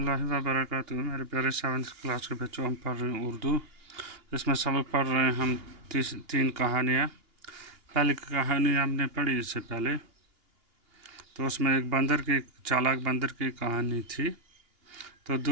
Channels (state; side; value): late; left; 2.8 ms